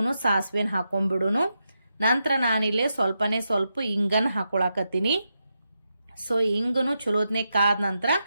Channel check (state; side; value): inverted; both; correlation -0.86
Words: ಸಾಸಿವೆನ ಹಾಕೊಂಡ್ಬಿಡುನು. ನಂತರ ನಾನಿಲ್ಲೇ ಸ್ವಲ್ಪ ಇಂಗನ್ ಹಾಕೊಳಕತ್ತೀನಿ. ಸೊ ಹಿಂಗನು ಚಲೋತ್ನೆ ಕಾದ ನಂತರ